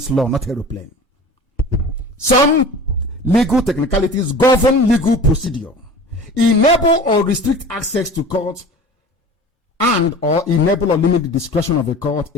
law, not aeroplane. Some legal technicalities govern legal procedure, enable or restrict access to court, and or enable or limit the discretion of a court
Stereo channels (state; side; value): normal; both; correlation 0.39